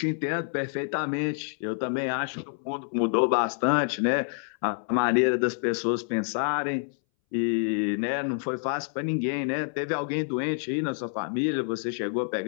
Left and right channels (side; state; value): right; silent; 60 dB below the other